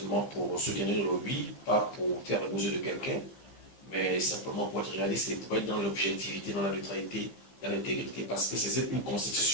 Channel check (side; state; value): right; late; 15 ms